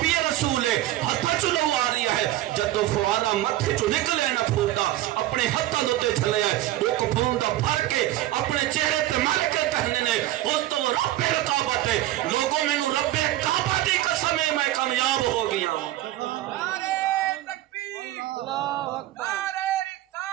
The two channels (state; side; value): quieter; left; 14.9 dB